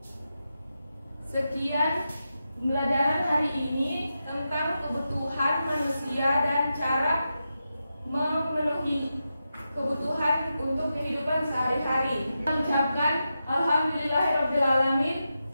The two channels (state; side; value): inverted; both; correlation -0.89